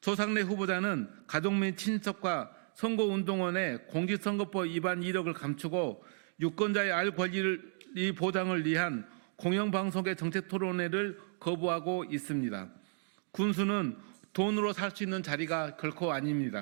후보자는 가족 및 친척과 선거운동원의 공직선거법 위반 이력을 감추고 유권자의 알 권리를 보장을 위한 공영방송의 정책토론회를 거부하고 있습니다. 군수는 돈으로 살 수 있는 자리가 결코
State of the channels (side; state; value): left; silent; 55 dB below the other